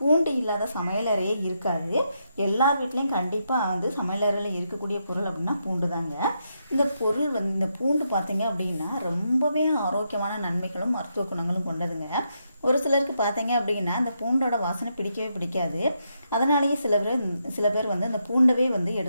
இல்லாத சமையலறையே இருக்காது. எல்லார் வீட்லேயும் கண்டிப்பாக சமையலறையில் இருக்கக்கூடிய பொருள் அப்படின்னா பூண்டு தாங்க. இந்த பொருள் இந்த பூண்டு பார்த்தீங்க அப்படின்னா ரொம்பவே ஆரோக்கியமான நன்மைகளும் மருத்துவ குணங்களும் கொண்டதுங்க. ஒரு சிலருக்கு பார்த்தீங்க அப்படின்னா இந்த பூண்டோட வாசனை பிடிக்கவே பிடிக்காது. அதனாலேயே சில பேர் இந்த பூண்டவே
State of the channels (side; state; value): both; inverted; correlation -0.81